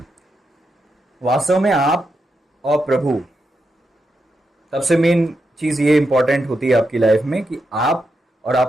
वास्तव में आप और प्रभु, सबसे मेन चीज ये इंपॉर्टेंट होती है आपकी लाइफ में कि आप और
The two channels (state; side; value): normal; both; correlation 0.85